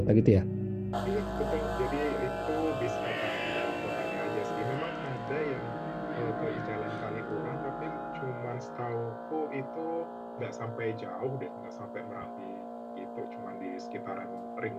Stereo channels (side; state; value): both; identical; correlation 1.00